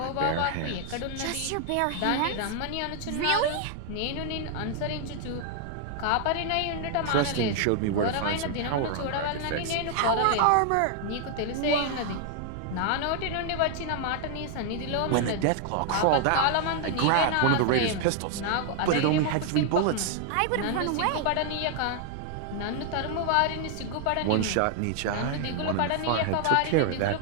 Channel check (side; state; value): both; different; correlation 0.00